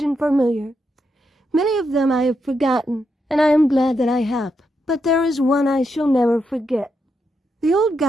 and familiar. Many of them I have forgotten, and I am glad that I have, but there is one I shall never forget. The old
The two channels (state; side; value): normal; both; correlation 0.82